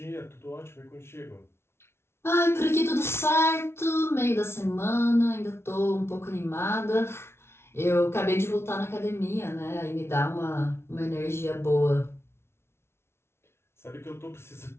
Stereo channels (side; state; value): right; late; 0.12 ms